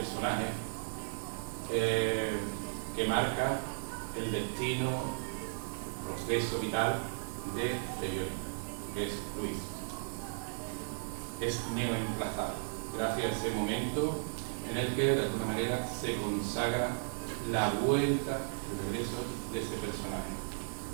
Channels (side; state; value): left; silent; digital silence